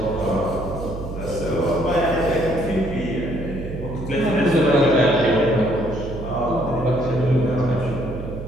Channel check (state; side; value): noise; right; hum, 9 dB below the sound